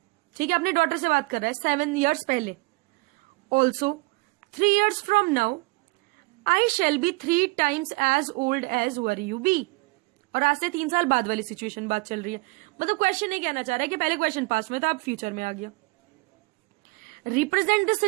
ठीक है, अपने डॉटर से बात कर रहा है 7 years पहले. Also, 3 years from now, I shall be 3 times as old as were you be. और आज से 3 साल बाद वाली सिचुएशन बात चल रही है. मतलब क्वेश्चन नहीं कहना चाह रहा है कि पहले क्वेश्चन पास्ट में था अब फ्यूचर में आ गया. Represent this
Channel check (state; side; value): quieter; left; 25.7 dB